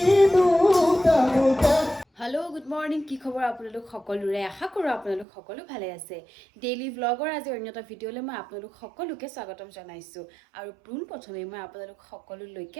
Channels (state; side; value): drops out; left; at 5.2 s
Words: হেল্ল' গুড মৰ্ণিং কি খবৰ আপোনালোক সকলোৰে আশা কৰোঁ আপোনালোক সকলো ভালে আছে ডেইলি ব্লগৰ আজি অন্য এটা ভিডিঅ'লৈ মই আপোনালোক সকলোকে স্বাগতম জনাইছোঁ আৰু পোনপ্ৰথমে মই আপোনালোক